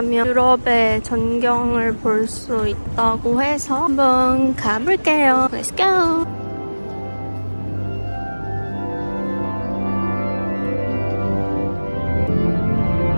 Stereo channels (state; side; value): inverted; both; correlation -1.00